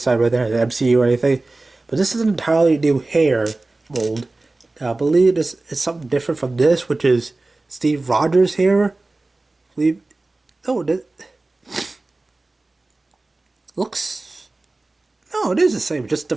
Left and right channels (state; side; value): quieter; left; 3.1 dB